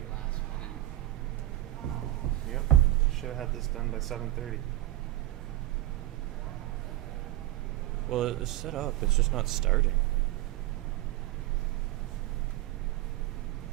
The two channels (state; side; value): quieter; left; 15.9 dB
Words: last minute. Yep. Should have had this done by 7:30. Well, it's set up. It's just not starting.